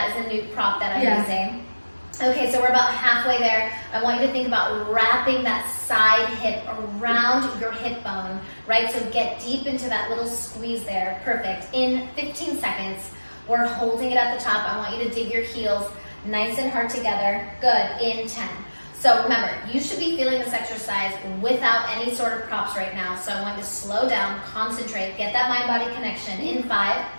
is a new prop that I'm using. Okay, so we're about halfway there. I want you to think about wrapping that side hip around your hip bone, right? So get deep into that little squeeze there. Perfect. In 15 seconds, we're holding it at the top. I want you to dig your heels nice and hard together. Good. In 10. So remember, you should be feeling this exercise without any sort of props right now. So I want you to slow down, concentrate, get that mind-body connection. In 5,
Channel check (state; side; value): inverted; both; correlation -1.00